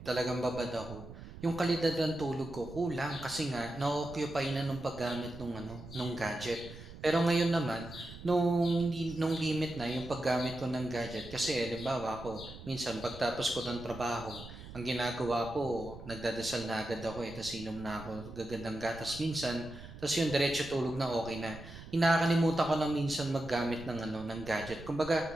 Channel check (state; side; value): noise; right; rumble, 14 dB below the sound